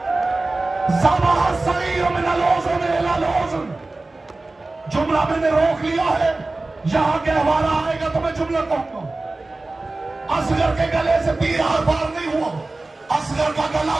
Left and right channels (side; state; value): left; quieter; 3.1 dB